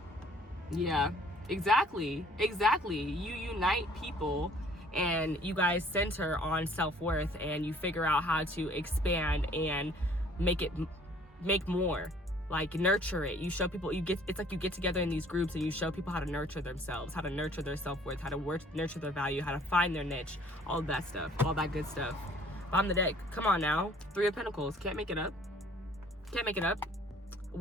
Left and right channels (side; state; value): both; normal; correlation 0.56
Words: Yeah, exactly. You unite people and you guys center on self-worth, and you figure out how to expand and make more. Like, nurture it. You show people, it's like you get together in these groups and you show people how to nurture themselves, how to nurture their self-worth, how to nurture their value, how to find their niche, all of that stuff, all that good stuff. Bottom of the deck, come on now. 3 of Pentacles, can't make it up.